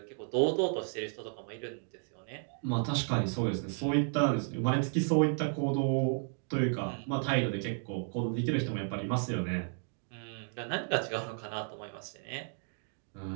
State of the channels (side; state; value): left; silent; 56 dB below the other